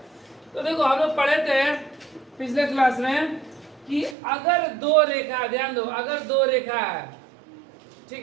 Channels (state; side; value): drops out; left; at 4.2 s